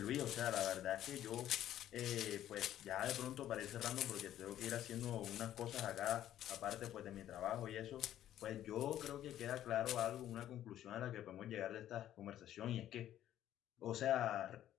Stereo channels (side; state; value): right; quieter; 12.1 dB